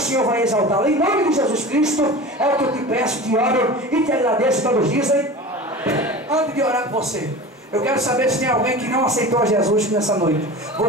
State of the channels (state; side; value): normal; both; correlation 0.34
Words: Senhor vai exaltá-lo. Em nome de Jesus Cristo, é o que eu te peço, te oro e te agradeço. Todos dizem. Antes de orar com você, eu quero saber se tem alguém que não aceitou a Jesus nessa noite.